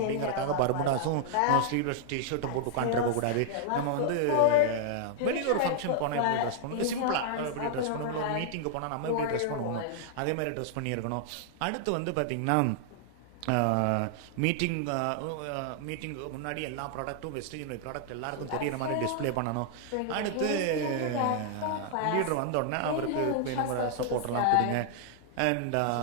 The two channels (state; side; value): different; both; correlation -0.01